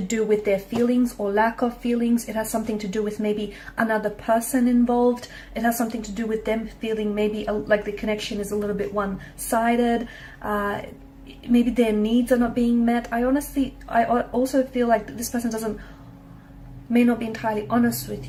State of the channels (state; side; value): identical; both; correlation 1.00